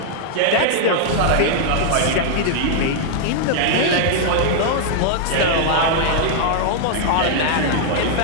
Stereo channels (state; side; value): different; both; correlation 0.00